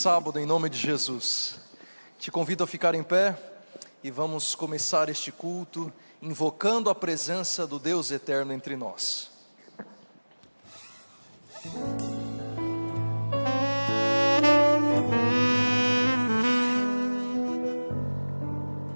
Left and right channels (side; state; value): both; inverted; correlation -1.00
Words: em nome de Jesus. Te convido a ficar em pé e vamos começar este culto invocando a presença do Deus eterno entre nós.